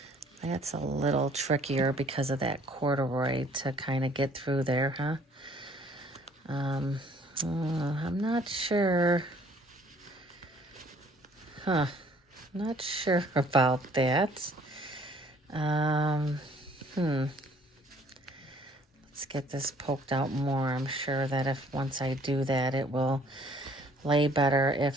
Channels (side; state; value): both; normal; correlation 0.58